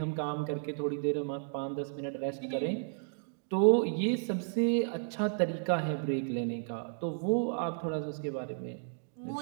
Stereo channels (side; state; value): left; silent; digital silence